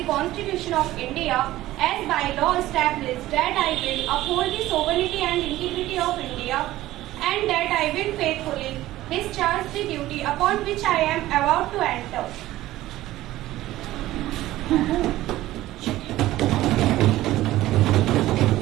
Constitution of India as by law established, that I will uphold the sovereignty and integrity of India, and that I will faithfully discharge the duty upon which I am about to enter.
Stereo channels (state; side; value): quieter; left; 15.8 dB